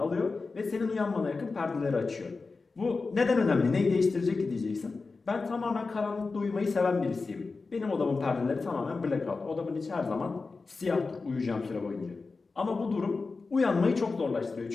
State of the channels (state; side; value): quieter; right; 4.1 dB